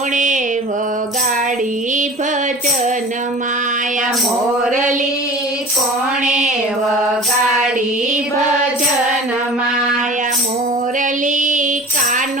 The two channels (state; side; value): normal; both; correlation 0.40